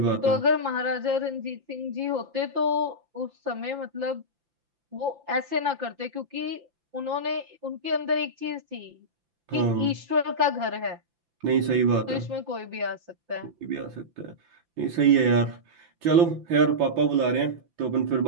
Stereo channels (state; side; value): late; left; 5.8 ms